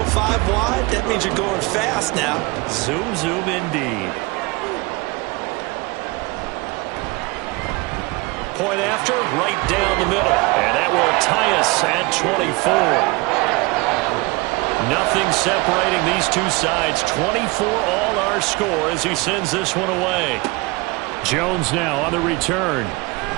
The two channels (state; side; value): quieter; left; 24.8 dB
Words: 5 wide, that means you're going fast now. Zoom, zoom indeed. Point after, right down the middle. And that will tie us at 24. Nothing separating these two sides. 24 all our score as he sends this one away. Jones now on the return.